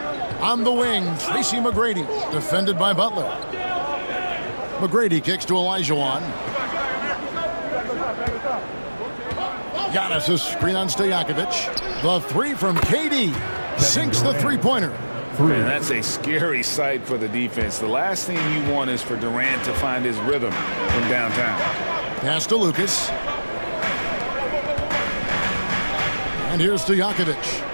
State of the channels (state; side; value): inverted; both; correlation -1.00